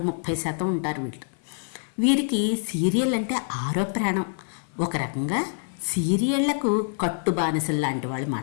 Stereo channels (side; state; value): right; silent; digital silence